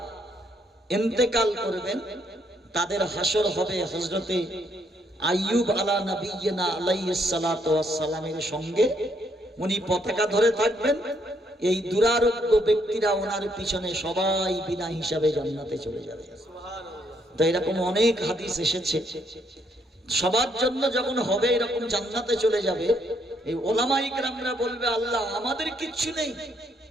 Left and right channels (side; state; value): both; normal; correlation 0.72